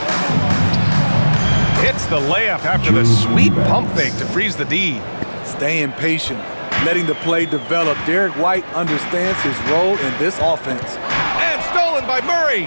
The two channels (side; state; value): both; inverted; correlation -1.00